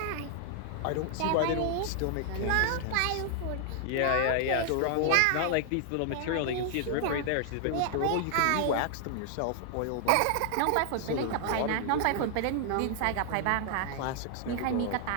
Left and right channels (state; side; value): different; both; correlation 0.00